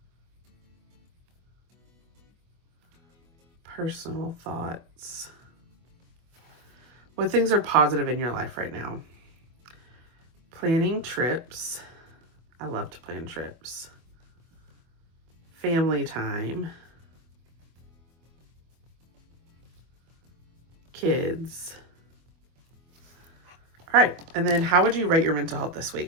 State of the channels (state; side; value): late; left; 24 ms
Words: personal thoughts. What things are positive in your life right now? Planning trips. I love to plan trips. Family time. Kids. All right. And then how would you rate your mental health this